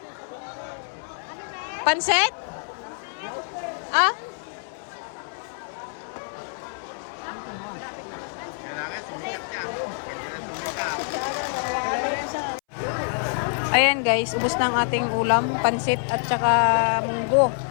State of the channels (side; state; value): right; silent; 61 dB below the other